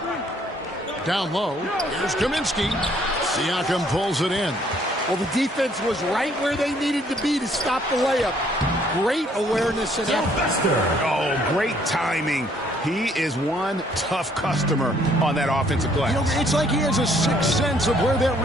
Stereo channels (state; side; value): normal; both; correlation 0.64